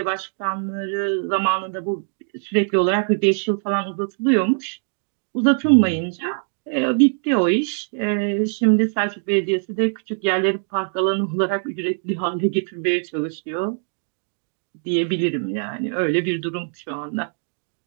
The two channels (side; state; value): left; silent; digital silence